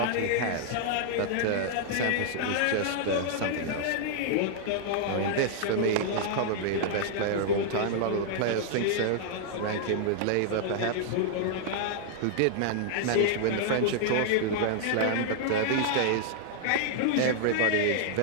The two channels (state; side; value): different; both; correlation -0.01